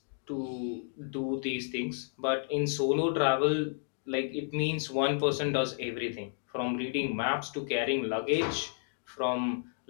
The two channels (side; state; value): right; silent; 57 dB below the other